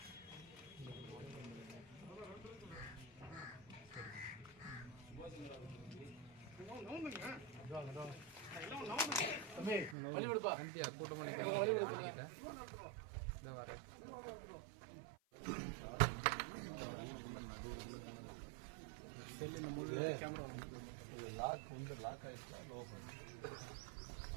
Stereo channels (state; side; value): drops out; left; at 10.0 s